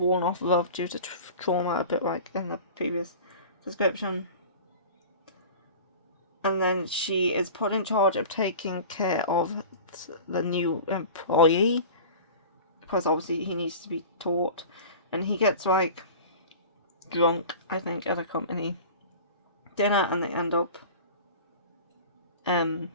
off love due to trauma, a bit like in the previous description. And then she is put in charge of taking care of the new employee, because obviously he needs to be taught, and he gets like drunk, I think, at a company dinner, and they end up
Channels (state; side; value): inverted; both; correlation -0.37